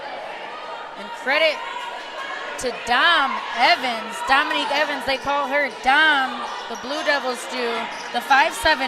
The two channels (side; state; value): both; identical; correlation 1.00